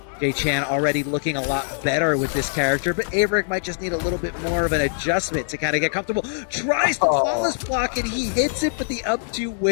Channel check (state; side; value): silent; right; digital silence